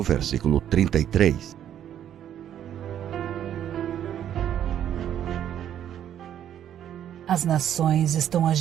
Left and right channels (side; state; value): left; quieter; 10.3 dB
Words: 33. As nações estão